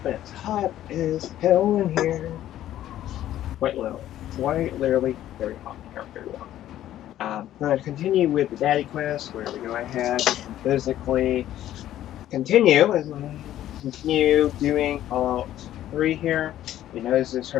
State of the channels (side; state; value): right; quieter; 12.7 dB